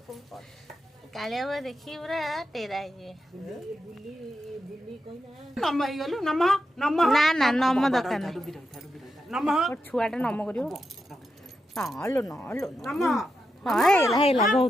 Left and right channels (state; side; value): normal; both; correlation 0.86